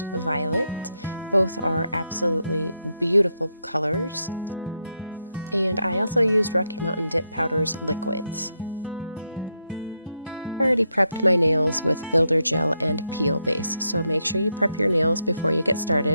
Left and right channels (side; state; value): both; inverted; correlation -0.82